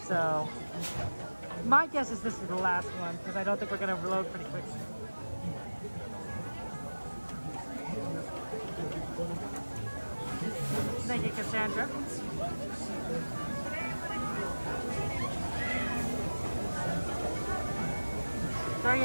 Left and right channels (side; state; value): both; inverted; correlation -1.00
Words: So my guess is this is the last one because I don't think we're gonna reload pretty quick. Thank you, Cassandra.